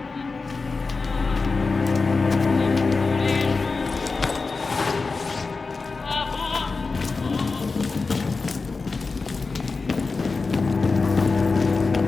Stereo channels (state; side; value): quieter; right; 4.2 dB